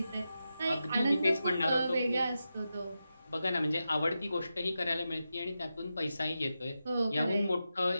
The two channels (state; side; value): inverted; both; correlation -0.90